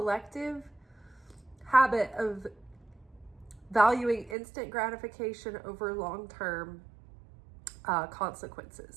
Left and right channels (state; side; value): drops out; left; at 4.4 s